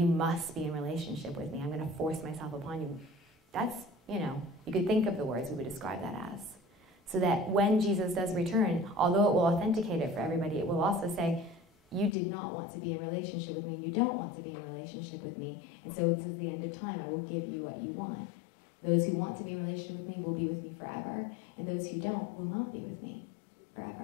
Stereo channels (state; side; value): drops out; right; at 12.2 s